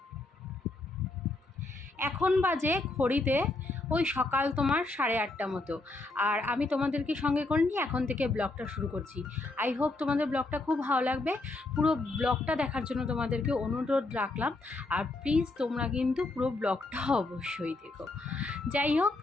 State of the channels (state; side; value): quieter; right; 3.1 dB